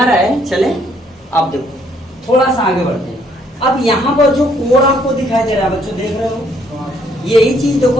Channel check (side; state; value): both; normal; correlation 0.67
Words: रहा है? चले अब देखो थोड़ा सा आगे बढ़ते हैं। अब यहाँ पर जो कोड आपको दिखाई दे रहा है बच्चों, देख रहे हो? यही चीज